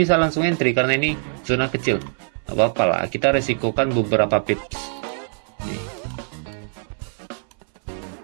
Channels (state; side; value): silent; left; 61 dB below the other